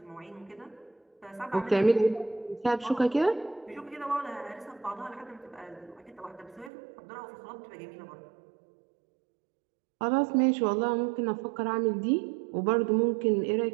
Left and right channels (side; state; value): left; drops out; at 6.7 s